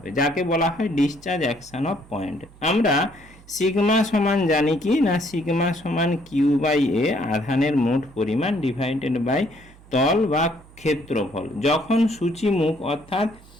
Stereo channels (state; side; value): noise; right; hum, 24 dB below the sound